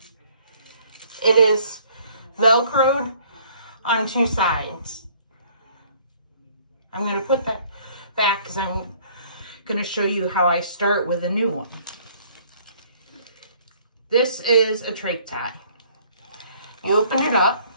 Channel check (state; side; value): inverted; both; correlation -0.59